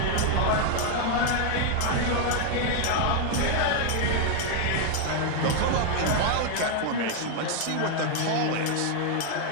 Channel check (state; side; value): different; both; correlation 0.00